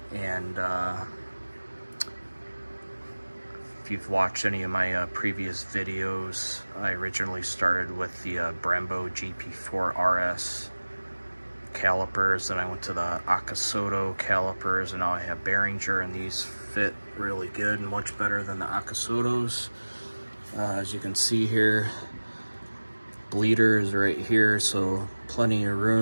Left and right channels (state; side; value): inverted; both; correlation -1.00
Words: And if you've watched any of my previous videos, I originally started with the Brembo GP4 RS calipers, and I went to the Akasoto calipers, and now I have Beringer, and these fit really good and much better than the Akasotos. As you can see here, bleeder is right here, so plenty of